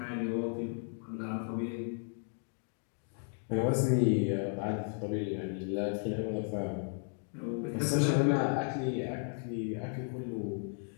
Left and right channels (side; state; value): right; silent; 55 dB below the other